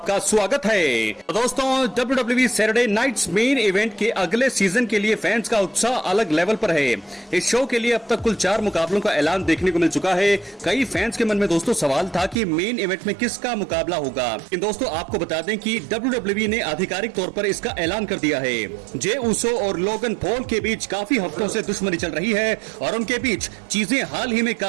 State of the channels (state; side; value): drops out; left; at 12.4 s